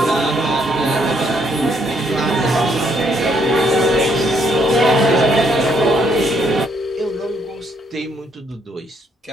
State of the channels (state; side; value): normal; both; correlation 0.70